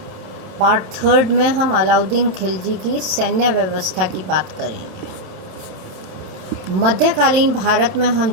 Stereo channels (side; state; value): left; late; 27 ms